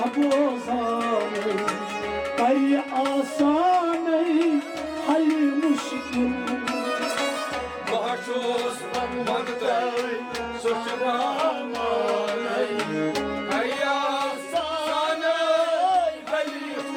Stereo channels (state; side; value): identical; both; correlation 1.00